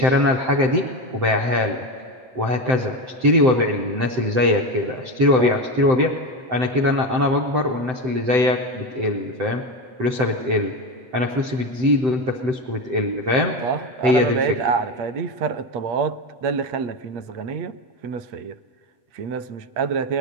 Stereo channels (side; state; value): left; late; 7.8 ms